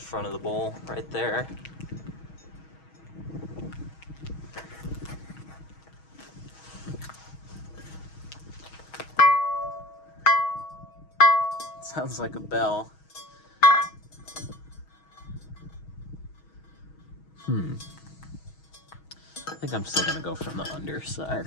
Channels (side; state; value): right; late; 6.3 ms